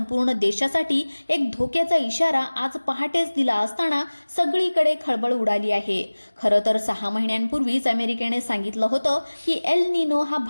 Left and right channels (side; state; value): both; inverted; correlation -1.00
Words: देशासाठी एक धोक्याचा इशारा आज पहाटेच दिला असताना सगळीकडे खळबळ उडाली आहे। खरं तर 6 महिन्यांपूर्वीच अमेरिकेने सांगितलं होतं की एल निनो हा